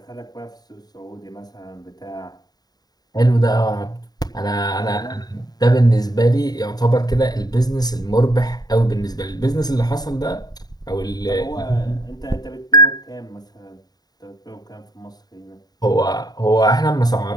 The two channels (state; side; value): late; right; 0.19 ms